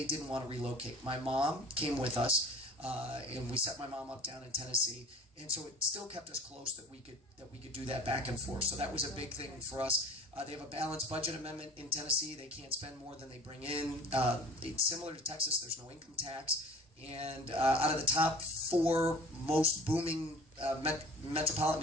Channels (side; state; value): both; normal; correlation 0.42